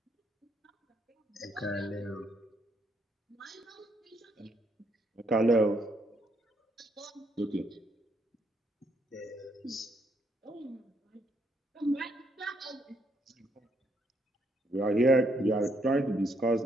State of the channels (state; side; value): normal; both; correlation 0.74